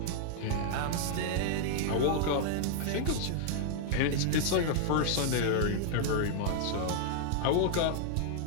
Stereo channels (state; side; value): different; both; correlation -0.01